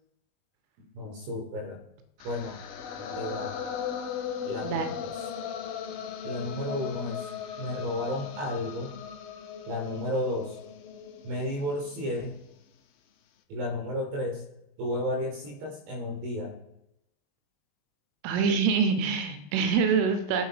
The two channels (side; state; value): left; late; 21 ms